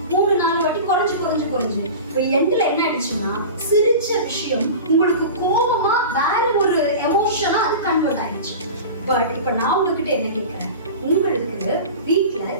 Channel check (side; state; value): both; inverted; correlation -0.33